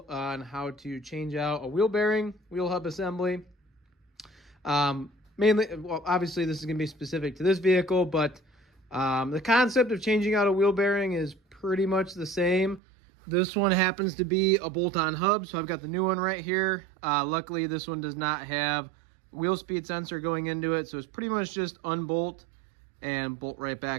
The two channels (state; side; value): drops out; left; at 12.8 s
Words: on how to change out a wheel bearing, wheel hub assembly. Mainly, well, obviously this is going to be specific to this vehicle, but the concept of changing out a wheel bearing is pretty much the same. This one happens to be a bolt-on hub, so I've got the new one right here. Luckily, this one does not have wheel speed sensor going into it, so it's pretty much just unbolt and bolt right